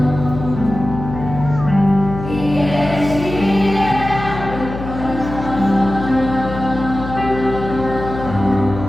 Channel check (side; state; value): left; noise; hum, 9 dB below the sound